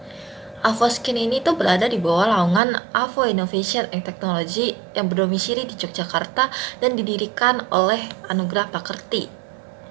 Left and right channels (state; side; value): drops out; left; at 2.6 s